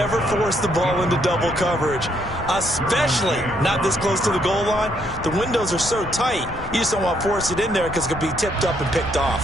force the ball into double coverage, especially not this close to the goal line. The windows are so tight, you just don't want to force it in there because it could be tipped up and picked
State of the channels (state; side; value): normal; both; correlation 0.72